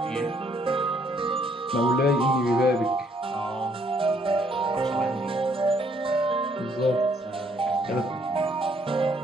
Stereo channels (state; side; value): normal; both; correlation 0.67